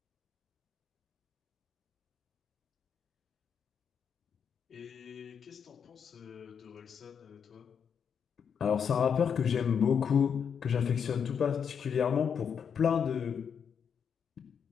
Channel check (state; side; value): quieter; right; 7.2 dB